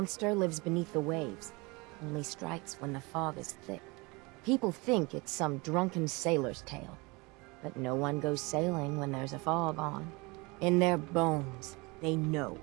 lives beneath the waves. Only strikes when the fog is thick. People think it's some drunken sailor's tale. But no one goes sailing when there's a fog on. In their bones, they know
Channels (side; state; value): left; quieter; 26.1 dB